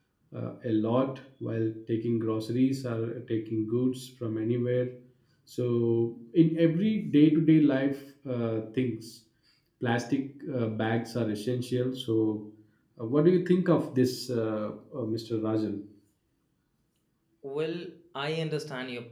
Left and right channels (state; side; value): identical; both; correlation 1.00